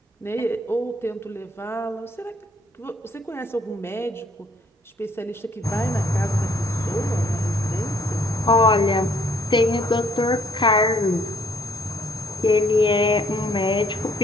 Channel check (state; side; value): normal; both; correlation 0.64